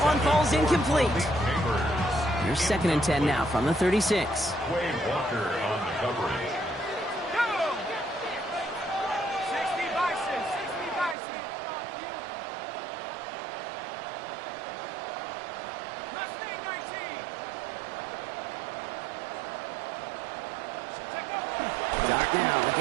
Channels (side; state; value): left; drops out; at 11.2 s